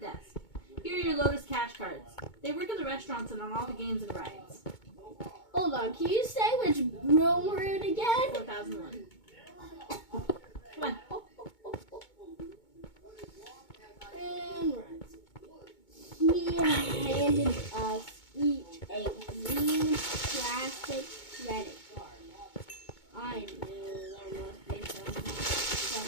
desk. Here are your Lotus cash cards. They work in the restaurants and on all the games and rides. Hold on, can you say which room we're in again? 4001. Come on. And right. handed us each a green plastic credit card. I knew there must be some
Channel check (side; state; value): right; late; 2.2 ms